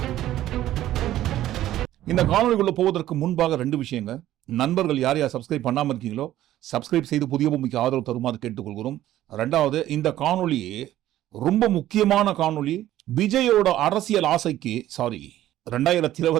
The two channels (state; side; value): quieter; left; 13.6 dB